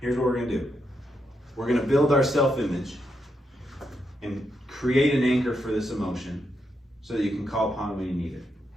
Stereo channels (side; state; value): both; normal; correlation 0.82